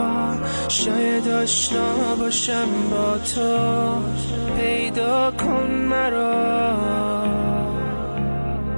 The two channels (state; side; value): inverted; both; correlation -1.00